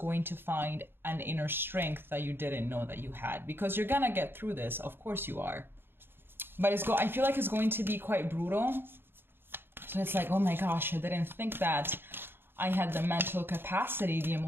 to find an inner strength that you didn't know that you had. Because you're going to get through this. Of course you are. But I feel like it's going to be quite brutal. So it's like, oh my gosh, I didn't think that I had the mental capacity, the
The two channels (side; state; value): left; late; 0.10 ms